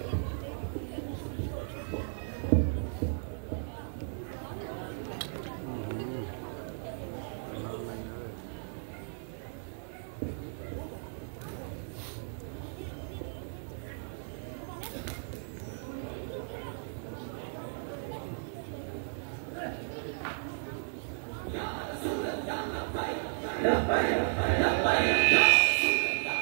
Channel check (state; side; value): silent; left; digital silence